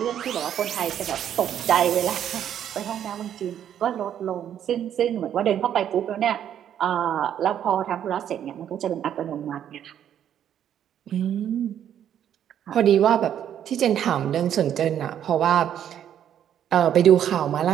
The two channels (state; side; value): quieter; left; 9.9 dB